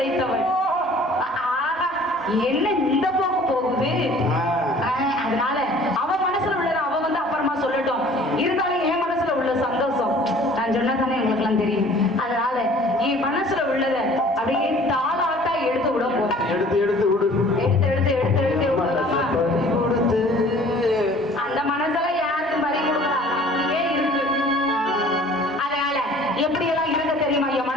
என்ன இந்த போக்கு போகுது. அதனால அவ மனசுல உள்ளத அவ வந்து அப்புறமா சொல்லட்டும். இருந்தாலும் என் மனசுல உள்ள சந்தோஷம் நான் சொன்னதானே உங்களுக்கு எல்லாம் தெரியும். அதனால என் மனசுல உள்ளத அப்படியே தாளாட்டா எடுத்து விட போறேன். எடுத்து எடுத்து விடு. எடுத்து எடுத்து எடுத்து எடுத்து விடலாமா? அந்த மனசெல்லாம் யாருக்கும் பறி கொடுக்கலாம். அப்படியே இருக்கு. அதனால எப்படி எல்லாம் இருக்க தெரியுமா என்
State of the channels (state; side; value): normal; both; correlation 0.51